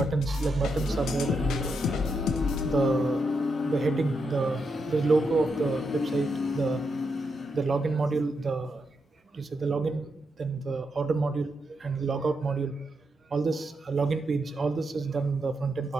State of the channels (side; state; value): both; normal; correlation 0.83